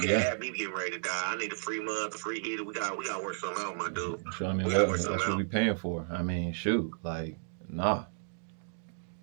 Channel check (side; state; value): left; silent; digital silence